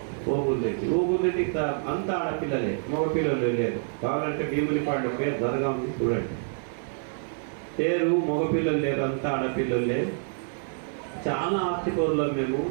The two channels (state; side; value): silent; left; 55 dB below the other